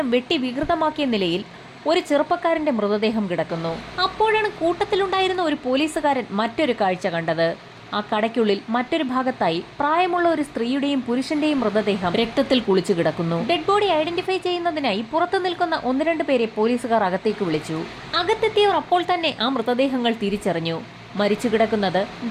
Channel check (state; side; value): identical; both; correlation 1.00